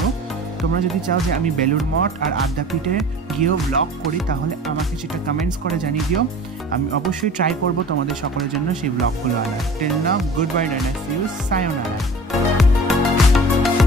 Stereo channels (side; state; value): both; normal; correlation 0.42